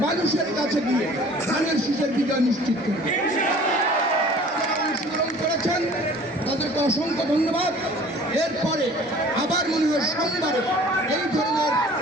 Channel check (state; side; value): normal; both; correlation 0.49